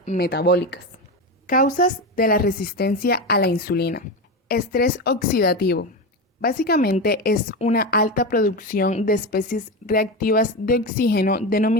metabólicas. Causas de la resistencia a la insulina. Estrés oxidativo. Básicamente es una alta producción de especies reactivas de oxígeno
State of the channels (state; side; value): normal; both; correlation 0.19